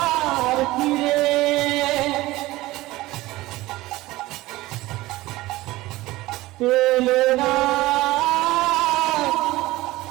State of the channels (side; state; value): left; quieter; 18.4 dB